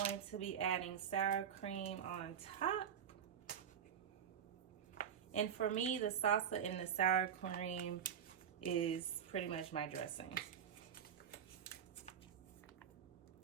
to be adding sour cream on top. And for me, the salsa and the sour cream is pretty much my dressing.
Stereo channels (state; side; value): quieter; left; 8.4 dB